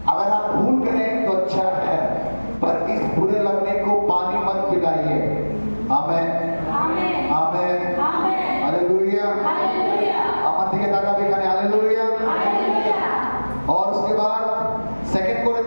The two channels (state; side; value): inverted; both; correlation -1.00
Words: अगर आप भूल करें तो अच्छा है, पर इस बुरे लगने को पानी मत पिलाइए। आमेन, आमेन, हालेलुया, আমার দিকে তাকাবে এখানে, हालेलुया। और उसके बाद सेकंड